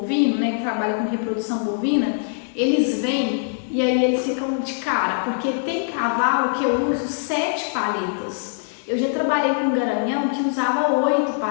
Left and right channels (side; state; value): right; silent; digital silence